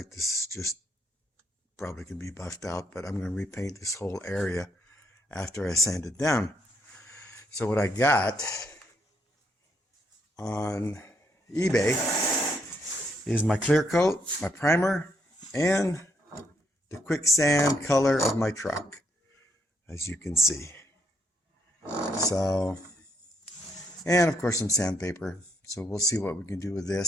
this is just probably can be buffed out, but I'm going to repaint this whole area after I sand it down. So what I got on eBay is my clear coat, my primer, and the quicksand color of my truck, as you can see. So, and of course some sandpaper. So we'll see what we can do with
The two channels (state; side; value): normal; both; correlation 0.73